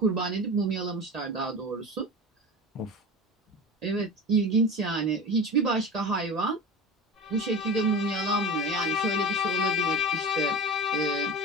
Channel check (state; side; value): normal; both; correlation 0.32